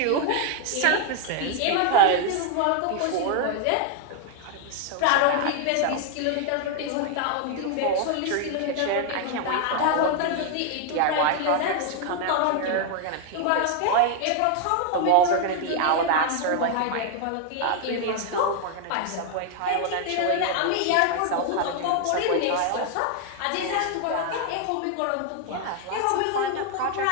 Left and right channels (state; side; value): different; both; correlation 0.00